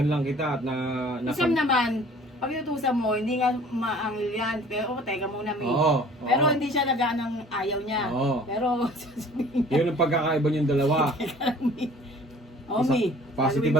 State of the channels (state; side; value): normal; both; correlation 0.50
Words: lang kita at Isang naman, pag inutusan mo, hindi nga maangil yan. Pero, teka muna, may. Oo. Pero hindi siya nagaan ng ayaw niya. Oo. Pero, sasabihin niya, Yun ang pagkakaiba niyong dalawa. Omi. Positive